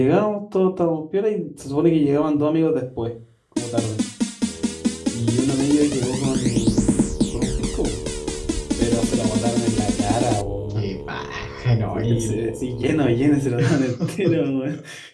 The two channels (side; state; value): both; identical; correlation 1.00